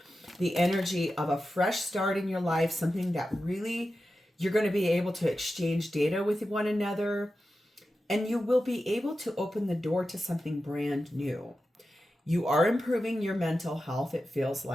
the energy of a fresh start in your life, something that really you're going to be able to exchange data with one another, and you will be able to open the door to something brand new. You are improving your mental health, it feels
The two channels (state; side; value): normal; both; correlation 0.92